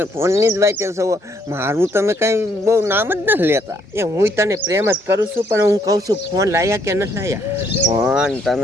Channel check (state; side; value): normal; both; correlation 0.70